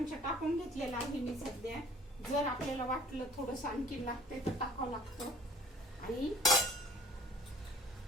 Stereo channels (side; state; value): both; normal; correlation 0.50